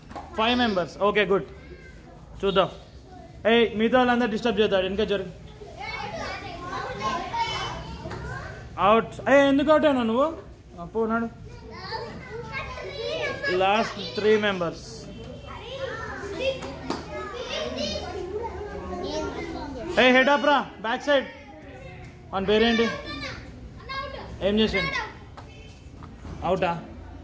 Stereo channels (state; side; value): identical; both; correlation 1.00